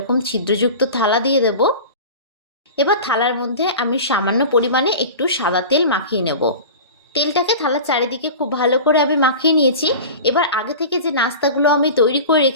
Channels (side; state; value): both; inverted; correlation -0.34